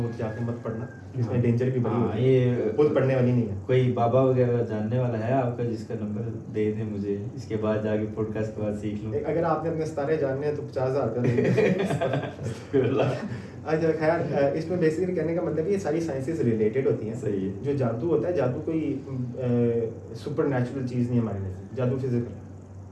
گا جا کے مت پڑھنا, اس میں ڈینجر بھی بڑی ہوتی ہے, یہ خود پڑھنے والی نہیں ہے. کوئی بابا وغیرہ جاننے والا ہے آپ کا جس کا نمبر دے دیں مجھے, اس کے بعد جا کے پوڈ کاسٹ کے بعد سیکھ لوں. اگر آپ نے اپنے ستارے جاننے ہیں تو 50,000 کا دیں گے. اچھا خیر, اس میں بیسیکلی کہنے کا مطلب یہ ساری سائنسز ریلیٹڈ ہوتی ہیں. صحیح ہے. جو جادو ہوتا ہے, جادو کوئی سپر نیچرل چیز نہیں ہمارے نزدیک, جادو فزیکل ہے.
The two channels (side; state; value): both; identical; correlation 1.00